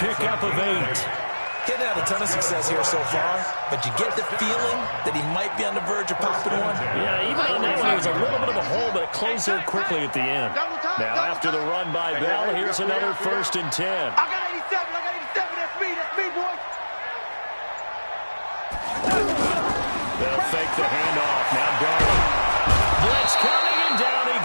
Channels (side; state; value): both; inverted; correlation -1.00